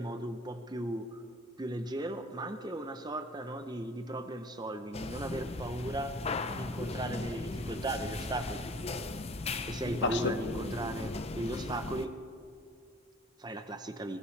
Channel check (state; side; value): normal; both; correlation 0.50